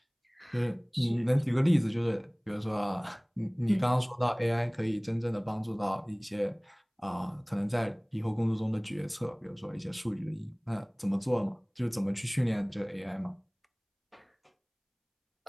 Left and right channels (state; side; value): identical; both; correlation 1.00